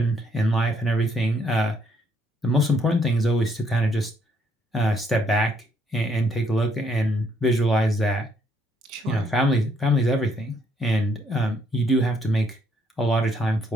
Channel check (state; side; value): normal; both; correlation 0.70